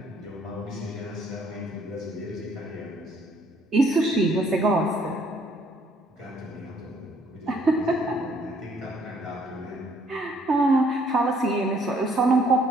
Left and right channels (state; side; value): normal; both; correlation 0.64